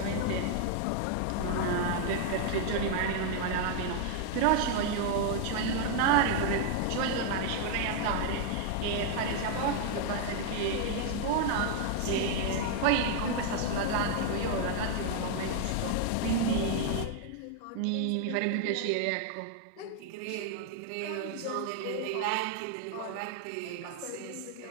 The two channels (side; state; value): both; different; correlation 0.00